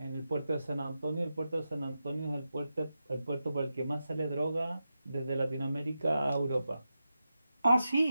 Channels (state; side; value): inverted; both; correlation -0.90